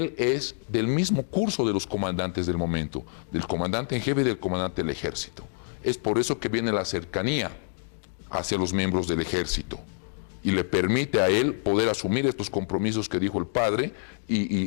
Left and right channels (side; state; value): right; silent; digital silence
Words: es del mismo curso de los comandantes del momento, del comandante en jefe y del comandante del ejército. Es por eso que viene la cercanía hacia los miembros del ejército y le permite a él poder asumir estos compromisos que dijo el padre